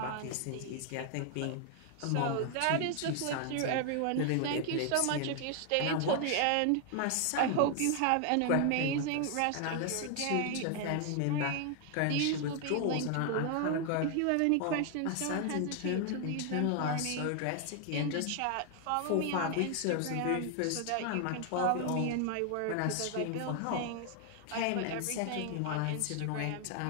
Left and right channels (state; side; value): different; both; correlation 0.00